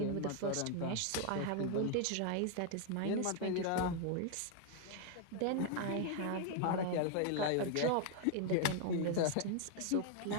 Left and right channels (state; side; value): different; both; correlation 0.00